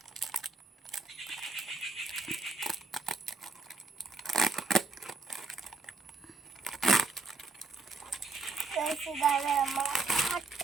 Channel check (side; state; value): left; quieter; 4.0 dB